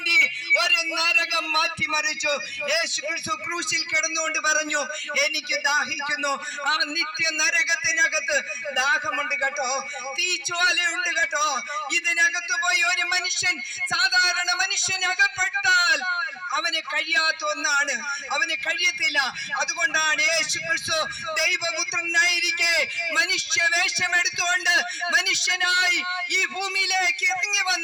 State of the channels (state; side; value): identical; both; correlation 1.00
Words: ഒരു നരകം മാറ്റിമറിച്ചു. യേശു ക്രിസ്തു ക്രൂശിൽ കിടന്നുകൊണ്ട് പറഞ്ഞു, എനിക്ക് ദാഹിക്കുന്നു. ആ നിത്യ നരകത്തിനകത്ത് ദാഹമുണ്ട് കേട്ടോ, തീജ്വാലയുണ്ട് കേട്ടോ. ഇതിനകത്ത് പോയി ഒരു മനുഷ്യൻ, സാധാരണ മനുഷ്യൻ അകപ്പെട്ടാൽ അവന് കഴിയാത്ത ഒന്നാണ്, അവന് കഴിയത്തില്ല. അതുകൊണ്ടാണ് യേശു ക്രിസ്തു ദൈവപുത്രനായിരിക്കെ മനുഷ്യവേഷം എടുത്തുകൊണ്ട് മനുഷ്യനായി ഈ ഭൂമിയിലേക്ക് ഇറങ്ങി